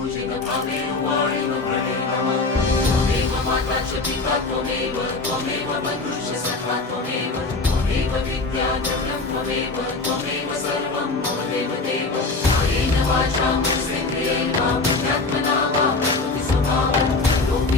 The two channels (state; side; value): quieter; right; 3.6 dB